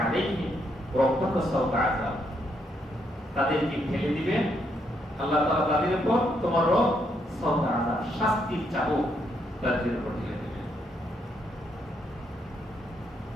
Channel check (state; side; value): normal; both; correlation 0.76